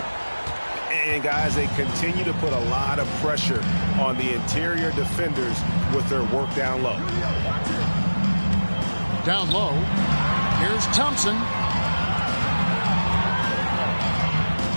And guys, they continue to put a lot of pressure on the interior defenders with their work down low. Down low. Here's Thompson.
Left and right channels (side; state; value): both; inverted; correlation -1.00